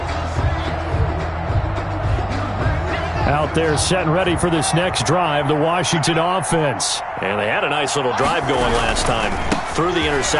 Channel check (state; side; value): identical; both; correlation 1.00